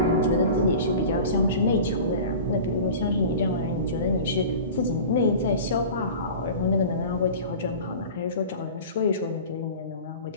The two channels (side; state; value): both; inverted; correlation -0.37